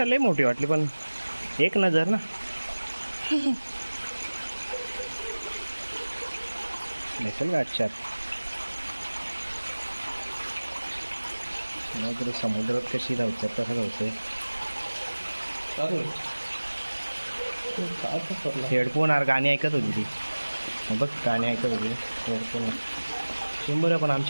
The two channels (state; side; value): inverted; both; correlation -1.00